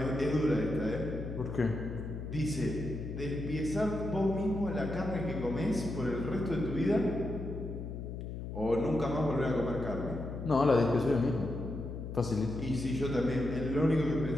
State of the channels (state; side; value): noise; left; hum, 7 dB below the sound